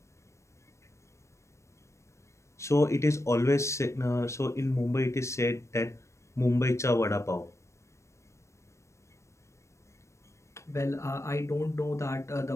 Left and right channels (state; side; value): late; right; 0.14 ms